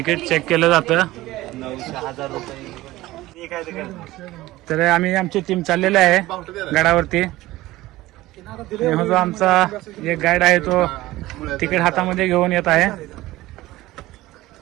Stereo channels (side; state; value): left; quieter; 17.5 dB